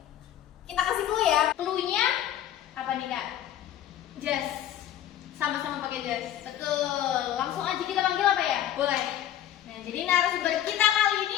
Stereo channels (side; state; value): right; quieter; 11.5 dB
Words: Kita kasih clue ya. Clue-nya apa nih, Kak? Jas. Sama-sama pakai jas. Betul. Langsung aja kita panggil apa ya? Boleh. Nah, jadi narasumber kita kali